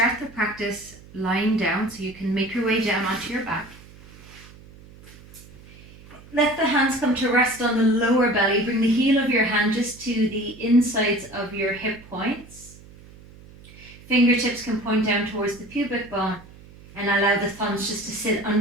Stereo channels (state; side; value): noise; right; hum, 21 dB below the sound